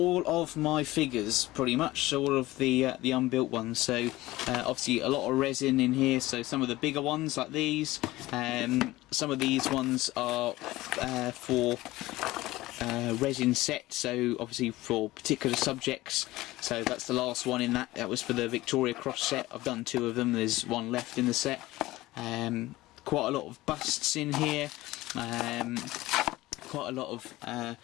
of my figures, pretty much, so all of the unbuilt ones. So obviously a lot of resin in here, so some of the bigger ones like these, some of these ones are for resin set, so obviously for particular subjects. So that's the last one in that was for the Victoria Cross set. I've done 2 of them, there's one left in the set. Quite a lot of busts in here, quite a lot of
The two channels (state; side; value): quieter; right; 18.1 dB